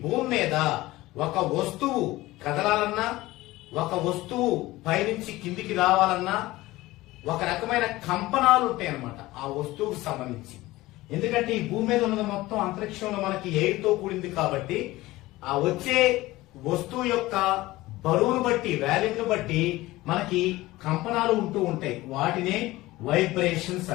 భూమి మీద ఒక వస్తువు కదలాలన్నా, ఒక వస్తువు పైనుంచి కిందికి రావాలన్నా ఒక రకమైన కంపనాలు ఉంటాయి అన్నమాట ఆ వస్తువుకు సంబంధించి. ఎందుకంటే ఈ భూమి మీద ఉన్నది మొత్తం అంతరిక్షంలో మనకి ఎయిర్ తో కూడింది కాబట్టి ఆ వచ్చే వస్తువు యొక్క బరువును బట్టి, వాల్యూమ్ బట్టి మనకి కంపనాలు ఉంటూ ఉంటాయి. వాటినే వైబ్రేషన్స్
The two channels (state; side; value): quieter; right; 18.4 dB